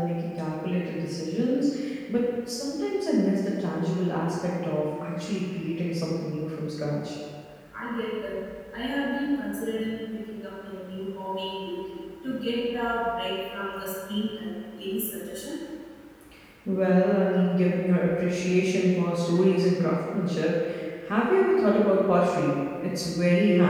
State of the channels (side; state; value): both; identical; correlation 1.00